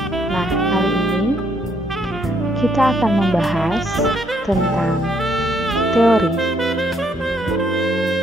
Nah, kali ini kita akan membahas tentang teori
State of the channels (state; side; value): normal; both; correlation 0.71